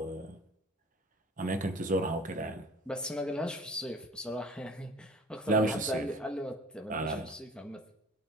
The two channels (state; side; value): normal; both; correlation 0.45